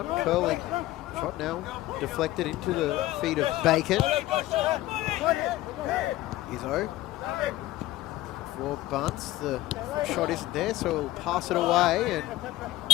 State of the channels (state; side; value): quieter; right; 16.5 dB